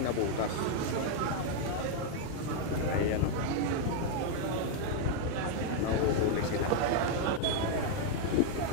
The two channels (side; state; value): both; different; correlation 0.00